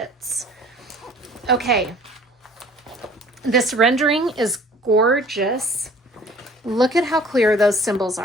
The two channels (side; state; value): both; normal; correlation 0.50